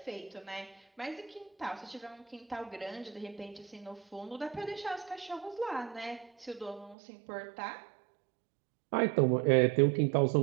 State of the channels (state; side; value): drops out; left; at 7.0 s